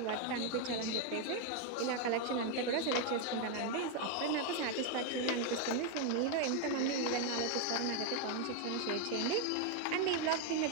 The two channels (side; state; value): both; different; correlation 0.01